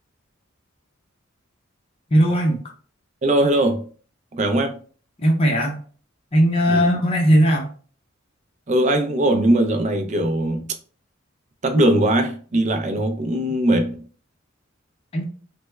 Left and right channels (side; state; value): both; normal; correlation 0.64